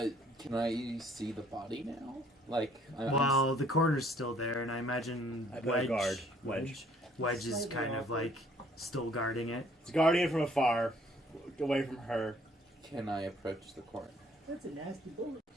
Can I see the body now? Like, Well, the coroner's still there, and I imagine I put a Wedge. guard. Wedge is kind of like still guarding it. It's guardian from afar, away from her. can I approach the coroner? That's a nasty bullet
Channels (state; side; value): normal; both; correlation 0.61